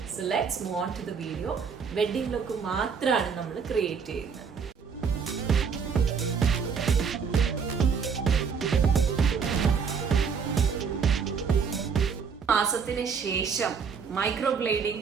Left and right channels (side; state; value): left; quieter; 6.1 dB